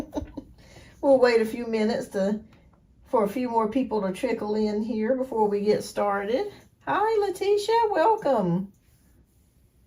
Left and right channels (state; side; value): identical; both; correlation 1.00